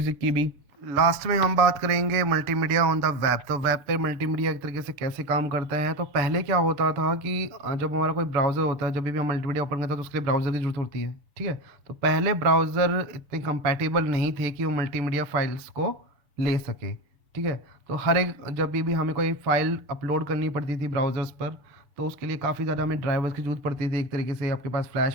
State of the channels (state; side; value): late; left; 6.8 ms